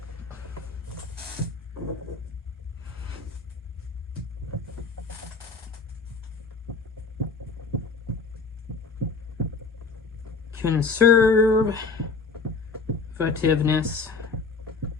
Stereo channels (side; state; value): right; quieter; 4.5 dB